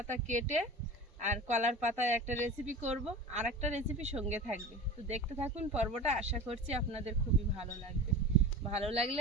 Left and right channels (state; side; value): normal; both; correlation 0.33